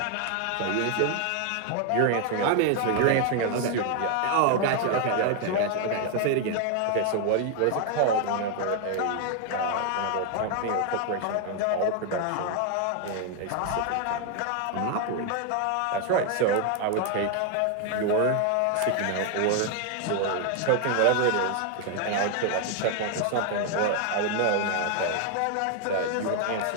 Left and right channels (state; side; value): different; both; correlation 0.00